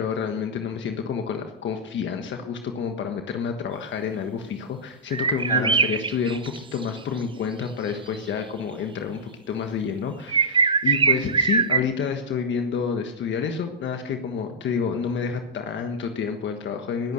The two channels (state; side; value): normal; both; correlation -0.09